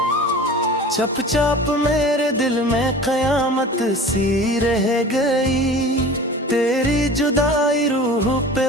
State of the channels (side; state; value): both; normal; correlation 0.39